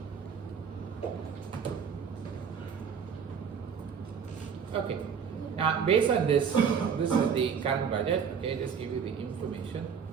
Okay. Now, based on this, this is the current budget. Okay, just give you the information.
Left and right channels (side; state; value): left; quieter; 6.9 dB